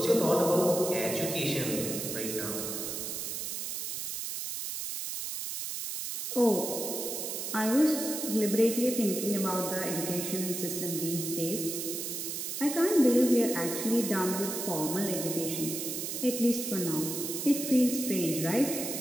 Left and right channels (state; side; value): noise; right; hiss, 4 dB below the sound